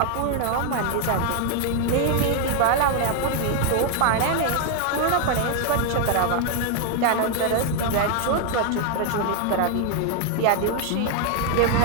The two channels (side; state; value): both; different; correlation 0.00